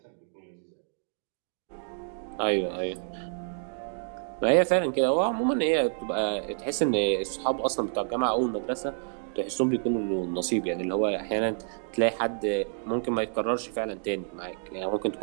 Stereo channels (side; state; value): left; silent; digital silence